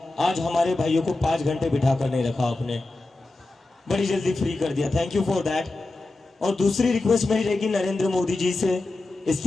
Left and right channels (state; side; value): quieter; right; 3.0 dB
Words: आज हमारे भाइयों को 5 घंटे बिठा कर नहीं रखा आपने, बड़ी जल्दी फ्री कर दिया, थैंक यू फॉर दैट। और दूसरी रिक्वेस्ट मेरी रहेगी नरेंद्र मोदी जी से,